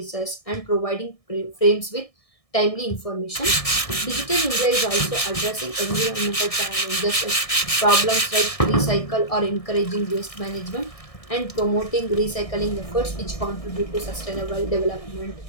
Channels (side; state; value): right; late; 1.6 ms